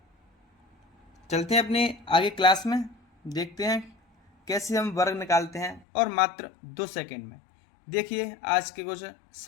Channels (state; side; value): drops out; right; at 5.9 s